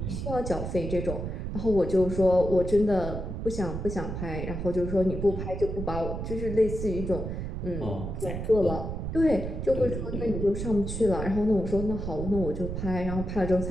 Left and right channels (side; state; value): right; noise; rumble, 5 dB below the sound